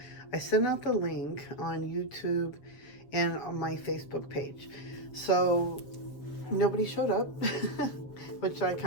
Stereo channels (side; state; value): right; late; 7.5 ms